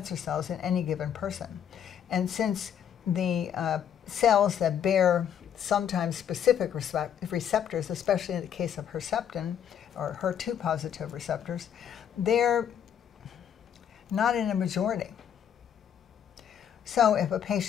cells in any given person. And since the cells that bear sometimes specific receptors, especially in the case of Herceptin or HER2 positive receptors, they're not in a majority. So if a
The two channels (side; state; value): right; quieter; 9.0 dB